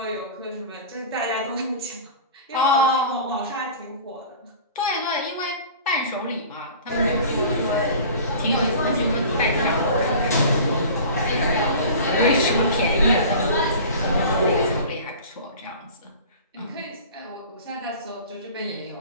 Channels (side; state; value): both; inverted; correlation -0.40